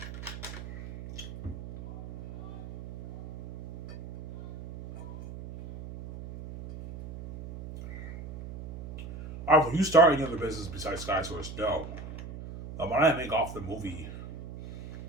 Alright, will you start any other business besides SkySource? No. The money I make off the movie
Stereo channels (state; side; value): noise; right; hum, 11 dB below the sound